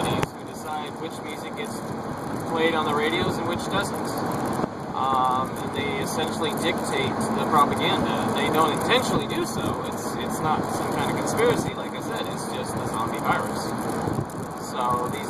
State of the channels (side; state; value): both; identical; correlation 1.00